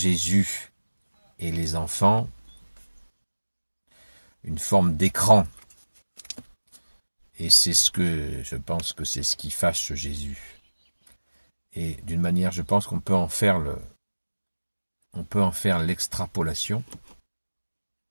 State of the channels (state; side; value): inverted; both; correlation -1.00